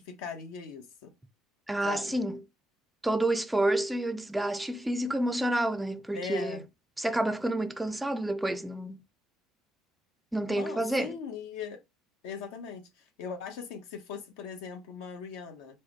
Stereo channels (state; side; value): normal; both; correlation 0.86